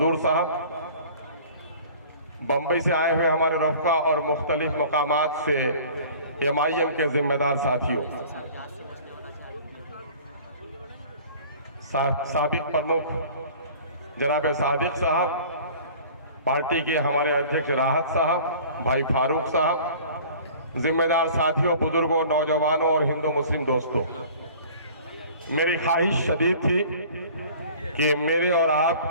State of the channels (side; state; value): both; inverted; correlation -0.46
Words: साहब, बम्बई से आए हुए हमारे रफ़का और मुख्तलिफ मकामात से एमआईएम के जिम्मेदार साथियों, साबिक प्रमुख जनाब सादिक साहब, पार्टी के हमारे अध्यक्ष राहत साहब, भाई फारूक साहब, जिम्मेदार साथियों, बुजुर्गों, नौजवानों और हिंदू मुस्लिम दोस्तों, मेरी ख्वाहिश शदीद थी कि मेरे और